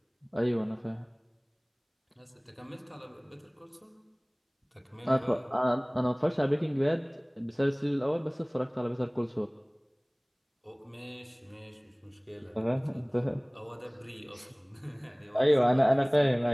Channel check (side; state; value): both; identical; correlation 1.00